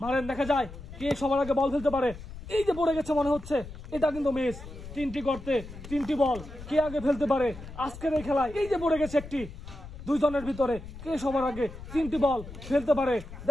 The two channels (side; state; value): left; noise; rumble, 13 dB below the sound